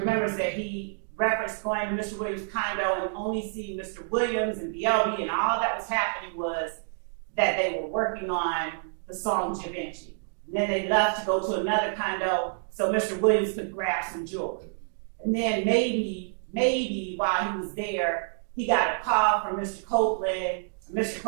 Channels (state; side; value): silent; left; digital silence